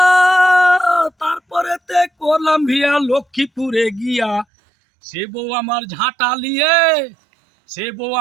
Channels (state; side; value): drops out; left; at 4.5 s